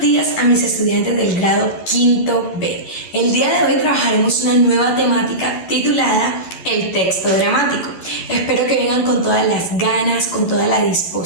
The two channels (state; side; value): late; right; 11 ms